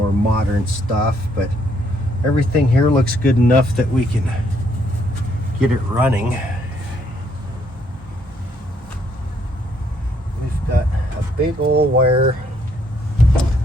modern stuff, but everything here looks good enough that we can get it running. We've got a big old wire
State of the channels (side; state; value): both; normal; correlation 0.70